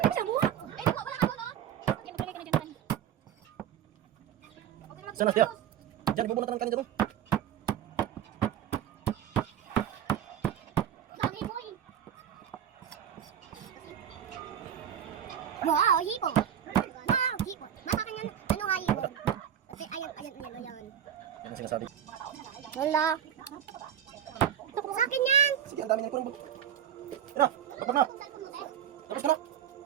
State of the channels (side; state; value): left; quieter; 9.6 dB